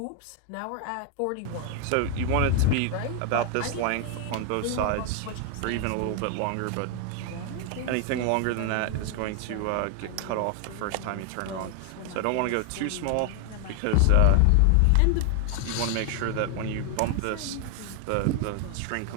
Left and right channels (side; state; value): both; different; correlation 0.00